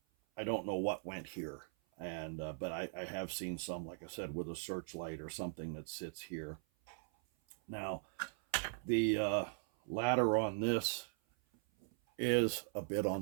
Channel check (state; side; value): silent; left; 51 dB below the other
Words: I don't know what went here, and but I have seen some, like I said, with a searchlight or something that sits here. Now, the ladder on this is a bit on